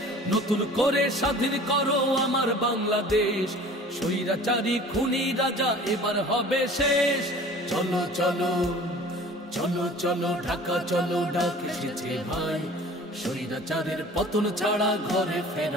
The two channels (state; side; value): normal; both; correlation 0.45